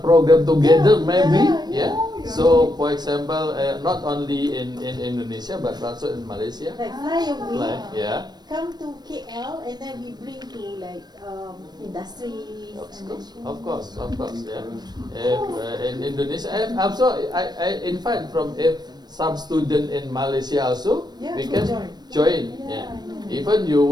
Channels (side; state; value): left; late; 0.20 ms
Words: together, maybe. So, for example, not only in Indonesia but also in Malaysia. Like fly away, come to KL, and then we bring to like industries. Of course, in Indonesia, and also I invite from some student in Malaysia also. We can join. Even you